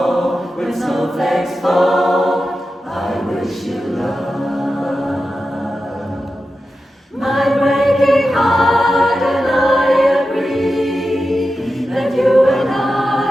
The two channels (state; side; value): normal; both; correlation 0.92